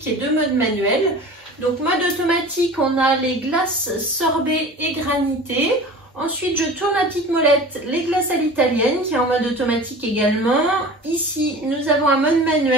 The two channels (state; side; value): normal; both; correlation 0.38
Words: et 2 modes manuels. Donc mode automatique, on a les glaces sorbet et granité. Ensuite je tourne la petite molette, les glaces à l'italienne qui est en mode automatique également. Ici nous avons un mode